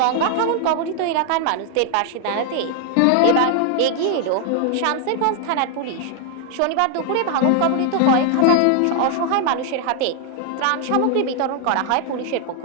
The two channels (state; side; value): different; both; correlation 0.00